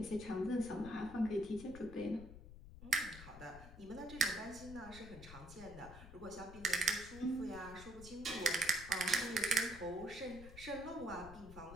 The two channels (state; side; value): noise; left; rumble, 14 dB below the sound